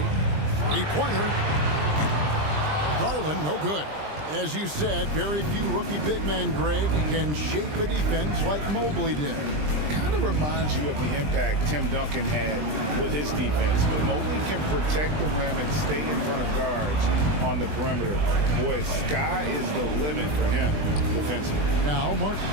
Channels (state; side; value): late; left; 20 ms